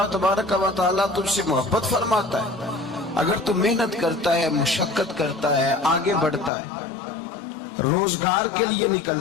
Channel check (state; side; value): drops out; right; at 6.5 s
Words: تبارک و تعالیٰ تجھ سے محبت فرماتا ہے۔ اگر تو محنت کرتا ہے، مشقت کرتا ہے، آگے بڑھتا ہے، روزگار کے لیے